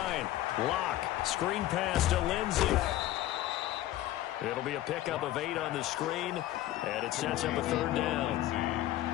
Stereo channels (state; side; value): quieter; right; 14.6 dB